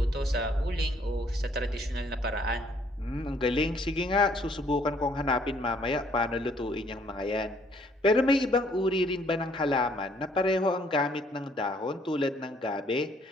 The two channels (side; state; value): both; normal; correlation 0.64